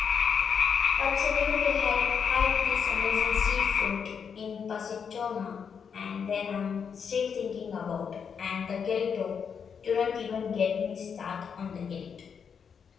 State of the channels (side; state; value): right; quieter; 6.7 dB